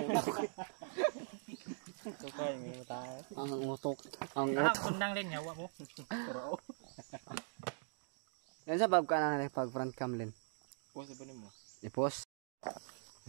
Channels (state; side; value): silent; left; digital silence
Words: utok. Sukay mi tayo. Ang utok. Ang utok. Kundang din yawa mo. Yan sa bab ka na pag front cam len. Pose ba nimo? I-post.